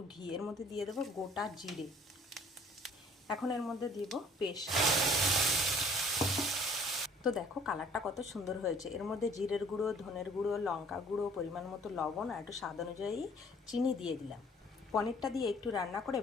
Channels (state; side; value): normal; both; correlation 0.56